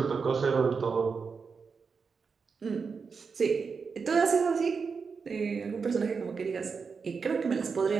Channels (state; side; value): quieter; left; 5.3 dB